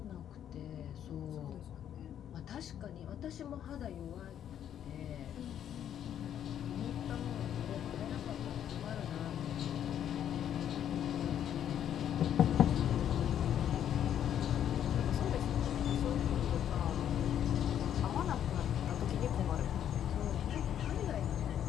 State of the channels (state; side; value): quieter; right; 9.9 dB